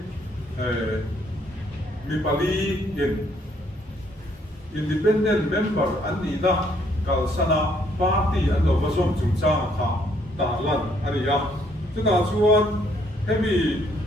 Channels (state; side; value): normal; both; correlation 0.68